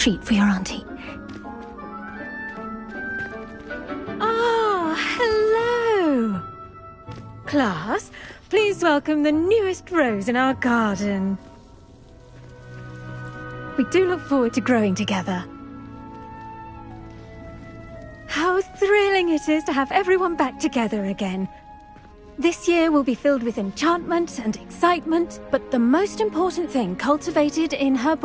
for your auntie. Ah, hello. Class, please welcome the newest rose in our garden. We do look forward to growing together. How thrilling it is to have everyone back together again. This year will be filled with enchantment and excitement, but the most important thing cultivated in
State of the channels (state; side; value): identical; both; correlation 1.00